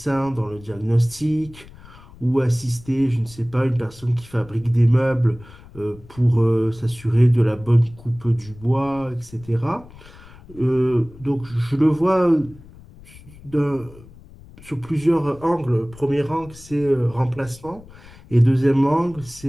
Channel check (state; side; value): noise; left; rumble, 21 dB below the sound